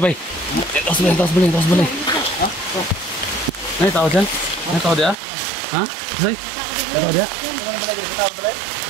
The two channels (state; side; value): drops out; left; at 5.2 s